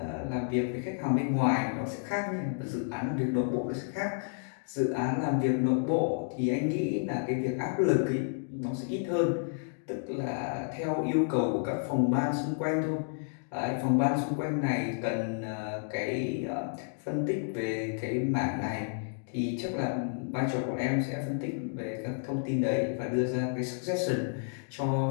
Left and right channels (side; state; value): right; silent; digital silence